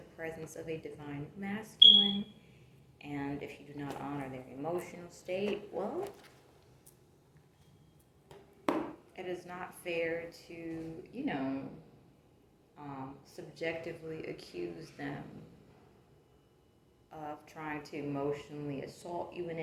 presence of a divine masculine and if you do not honor their emotional state, well, it is not fair to, you know, subjectively accuse them of trying to emotionally assault you in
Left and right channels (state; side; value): identical; both; correlation 1.00